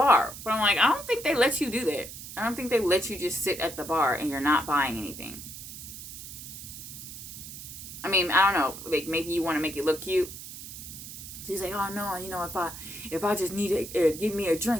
But I'm like, I don't think they let you do that. I don't think they let you just sit at the bar and you're not buying anything. I mean, I don't know. Like, maybe you want to make it look cute. So he's like, oh, no, if I just need to give me a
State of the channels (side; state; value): right; noise; hiss, 12 dB below the sound